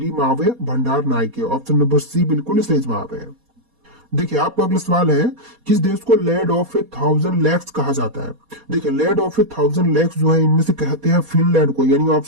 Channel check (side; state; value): left; late; 4.2 ms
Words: मावे भंडार नायके। ऑप्शन नंबर सी बिल्कुल सही जवाब है। देखिए आपका अगला सवाल है, किस देश को लैंड ऑफ ए 1000 लेक्स कहा जाता है? देखिए लैंड ऑफ ए 1000 लेक्स जो है इनमें से कहते हैं फिनलैंड को, यानी